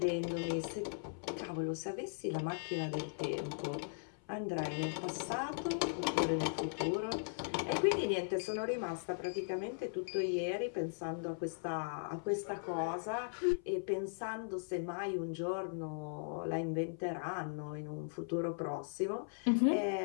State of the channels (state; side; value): silent; right; 52 dB below the other